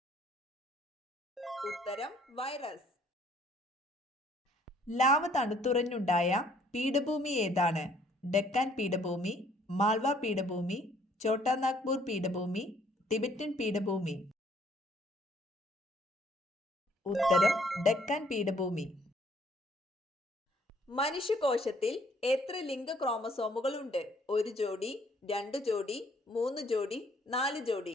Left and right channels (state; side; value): normal; both; correlation 0.62